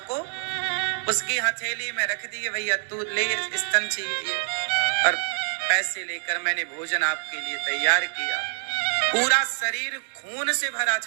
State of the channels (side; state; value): left; silent; digital silence